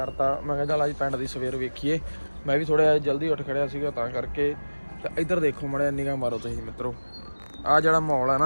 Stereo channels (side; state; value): both; inverted; correlation -1.00